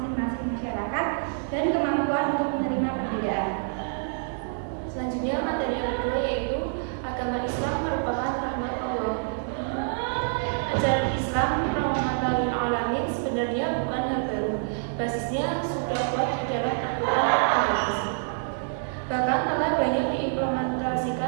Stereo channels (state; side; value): silent; left; digital silence